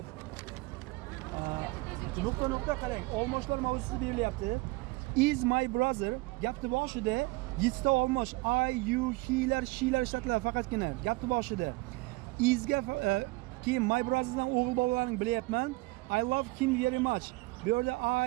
Nuqta qarang. Olmoshlar mavzusi berilyapti. Is my brother gapni boshida 7 ta olmosh I, you, he'lar, she'lar ishlatiladi faqatgina gapni boshida. Is ga keyin my brotherdan o'g'il bolalarni bilyapman. I love him very much. Bu yerda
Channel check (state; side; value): quieter; left; 23.4 dB